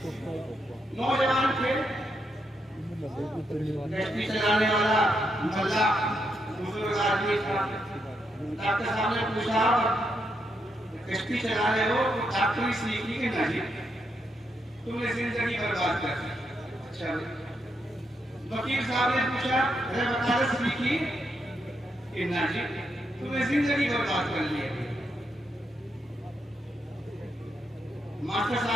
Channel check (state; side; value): normal; both; correlation 0.81